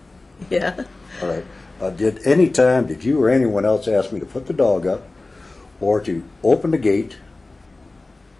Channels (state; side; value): quieter; right; 3.2 dB